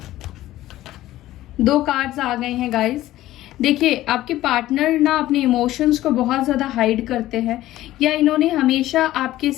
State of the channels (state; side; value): quieter; right; 15.1 dB